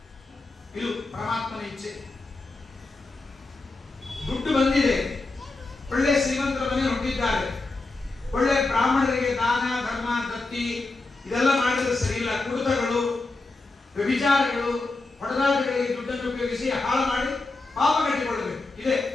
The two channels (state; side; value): quieter; right; 3.4 dB